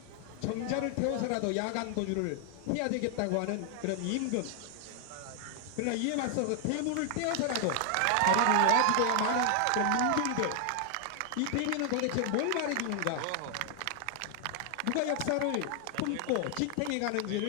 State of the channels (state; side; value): different; both; correlation 0.00